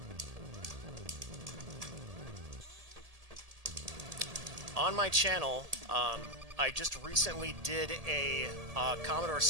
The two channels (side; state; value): left; late; 1.8 ms